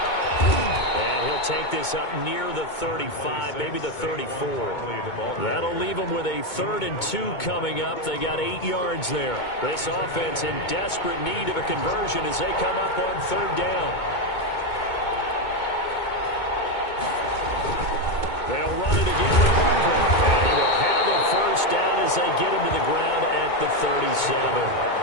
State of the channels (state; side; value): late; right; 2.2 ms